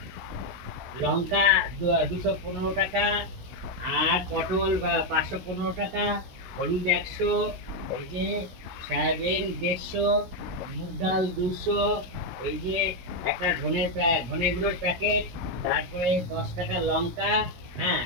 লঙ্কা 215 টাকা, আর পটল 515 টাকা, হলুদ 100, এই যে সয়াবিন 150, মুগ ডাল 200, এই যে একটা ধনে গুঁড়োর প্যাকেট, তারপরে 10 টাকা লঙ্কা। হ্যাঁ,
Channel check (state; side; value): late; left; 17 ms